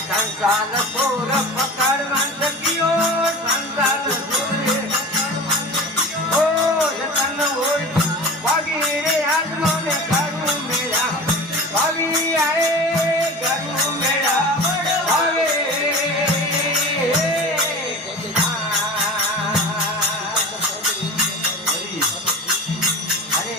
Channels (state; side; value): normal; both; correlation 0.33